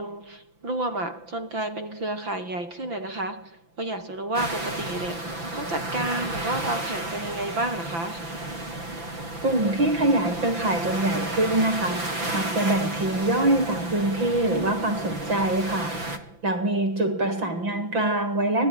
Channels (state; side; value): late; left; 5.9 ms